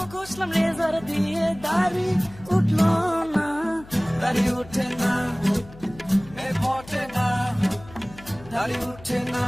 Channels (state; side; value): noise; left; hum, 19 dB below the sound